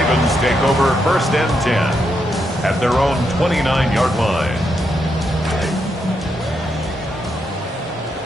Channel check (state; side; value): normal; both; correlation 0.81